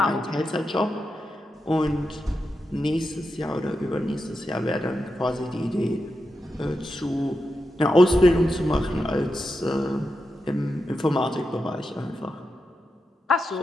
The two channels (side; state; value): both; normal; correlation 0.88